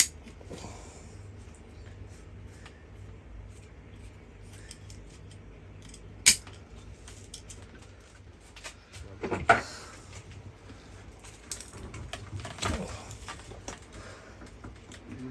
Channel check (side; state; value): both; identical; correlation 1.00